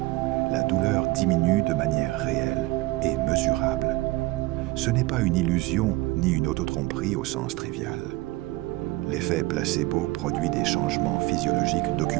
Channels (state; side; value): quieter; left; 20.1 dB